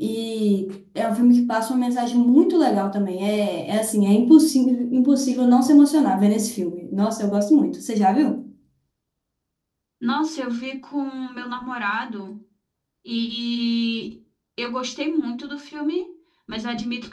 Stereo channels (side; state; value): both; identical; correlation 1.00